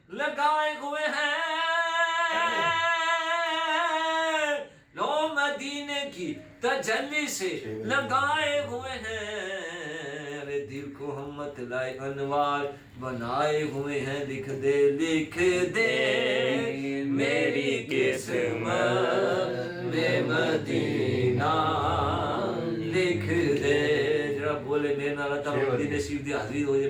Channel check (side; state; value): both; identical; correlation 1.00